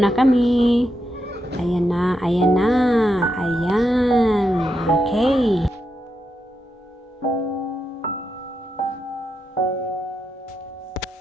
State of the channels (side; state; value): both; normal; correlation 0.84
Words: na kami. Ayan na, ayan na. Ayan. Okay.